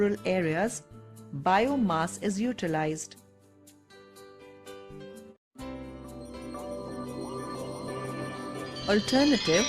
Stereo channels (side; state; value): both; identical; correlation 1.00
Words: areas, biomass is utilized. Alternative